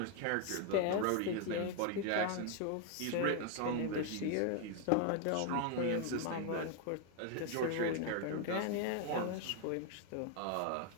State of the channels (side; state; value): both; different; correlation 0.01